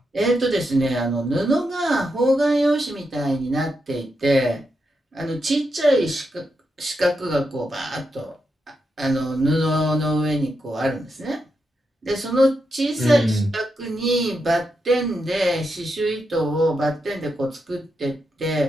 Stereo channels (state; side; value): normal; both; correlation 0.85